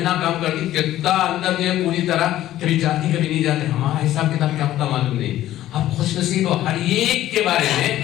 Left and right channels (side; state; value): right; quieter; 13.7 dB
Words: کام کرتی, کتنا اندر جو ہے پوری طرح کبھی جاتی کبھی نہیں جاتے. ہمارا حساب کتاب کیا ہوتا معلوم نہیں. اب خوش نصیب ہو ہر ایک کے بارے میں.